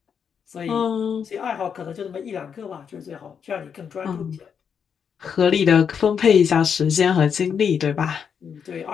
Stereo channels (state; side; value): quieter; right; 7.1 dB